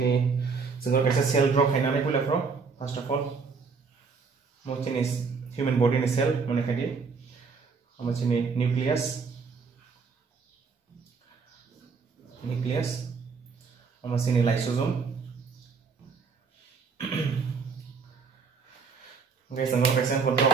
जों गासै cell drop खायनानै पुलाफ्राव first of all मोचिनि human body नि सेल माने खादि मोचिनि nucleus मोचिनि lysosome guys ang kaisa control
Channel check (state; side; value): quieter; left; 5.1 dB